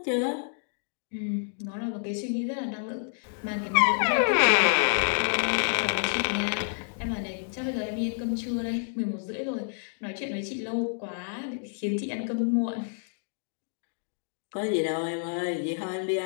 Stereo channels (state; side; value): silent; right; digital silence